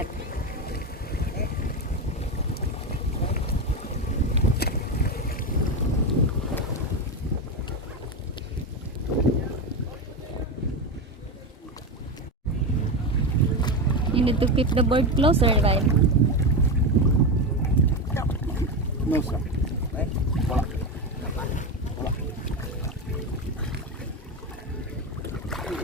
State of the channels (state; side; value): normal; both; correlation 0.15